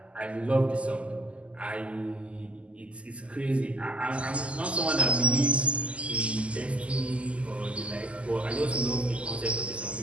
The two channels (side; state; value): left; late; 0.058 ms